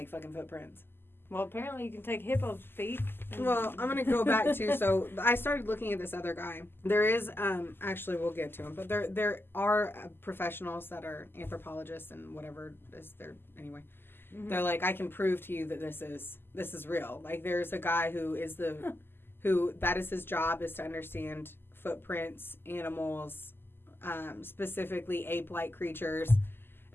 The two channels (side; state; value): right; late; 0.10 ms